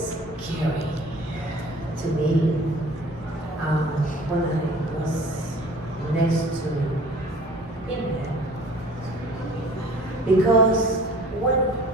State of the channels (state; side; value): normal; both; correlation 0.48